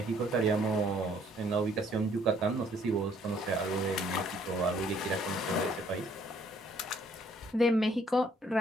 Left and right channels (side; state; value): both; normal; correlation 0.64